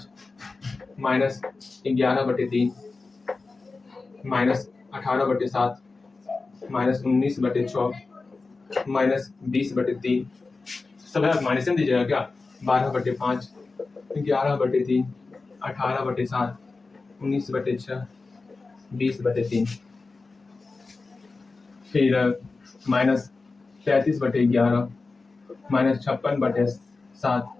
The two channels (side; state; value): right; quieter; 3.9 dB